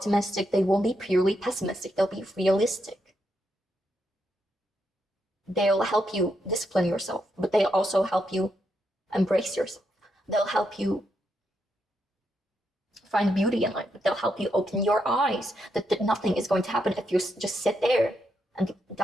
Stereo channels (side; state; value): both; normal; correlation 0.81